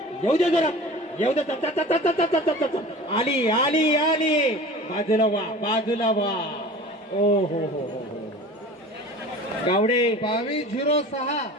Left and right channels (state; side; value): normal; both; correlation 0.39